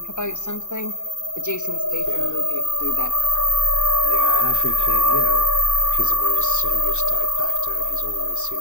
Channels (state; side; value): late; right; 0.84 ms